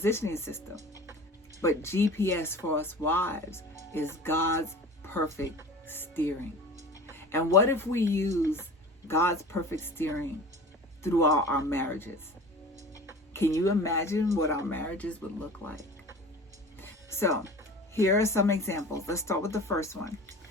system. But GPS for us wives is God's perfect steering. And what if we use God's perfect steering throughout our marriages? Can you imagine what our marriages would look like? So here are some examples. Let's start with the first one.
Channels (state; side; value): normal; both; correlation 0.39